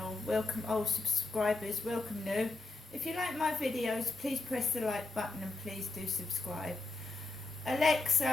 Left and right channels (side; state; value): right; quieter; 3.2 dB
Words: Welcome old subscribers, welcome new. If you like my videos, please press the like button and please do subscribe.